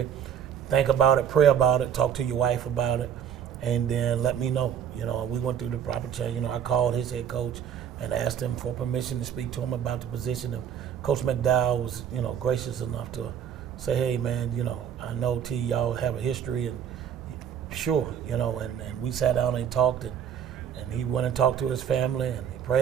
Think about it, pray about it, talk to your wife about it, and then let me know. You know, we went through the proper change. You know, I called his head coach and asked him for permission to speak to him about the position. And Coach McDowell was, you know, gracious enough to say, hey, man, you know, I know T, y'all have a history, and sure, you know, and we sat down and talked, and he went and talked to his family, and he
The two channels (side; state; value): left; quieter; 8.8 dB